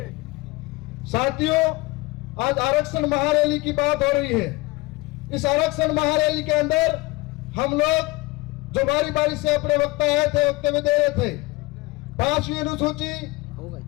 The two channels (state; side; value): quieter; right; 22.2 dB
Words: साथियों, आज आरक्षण महारैली की बात हो रही है। इस आरक्षण महारैली के अंदर हम लोग जो बारी बारी से अपने वक्ता आए थे, वक्तव्य दे रहे थे। 5वीं अनुसूची